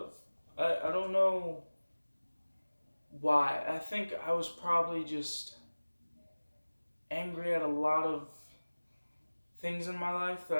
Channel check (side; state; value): both; inverted; correlation -1.00